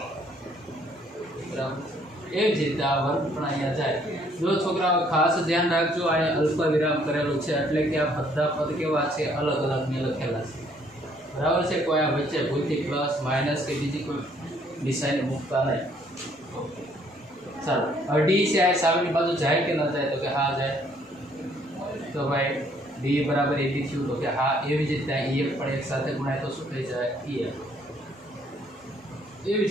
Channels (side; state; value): both; normal; correlation 0.64